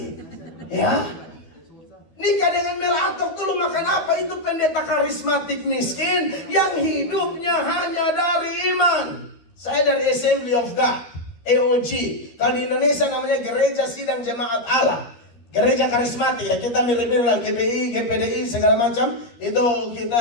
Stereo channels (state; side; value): late; right; 13 ms